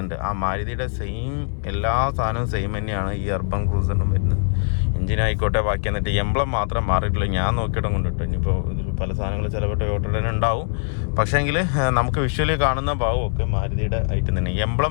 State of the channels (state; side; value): silent; right; digital silence